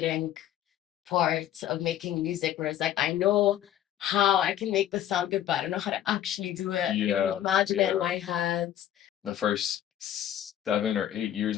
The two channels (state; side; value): quieter; right; 11.4 dB